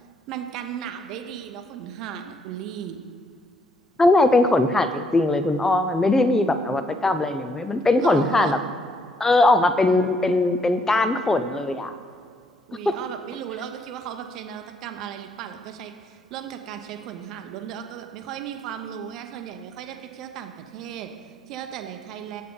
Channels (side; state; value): both; normal; correlation 0.71